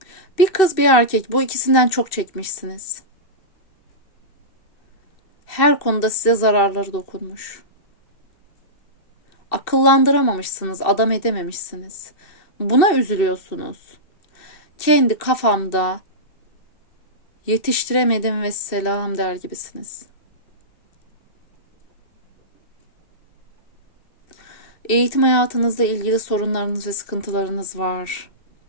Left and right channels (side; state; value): right; late; 2.6 ms